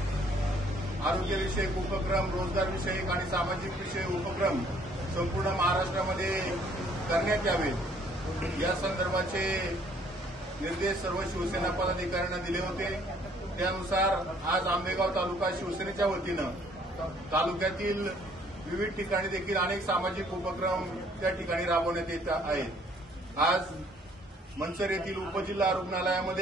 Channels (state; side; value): normal; both; correlation 0.61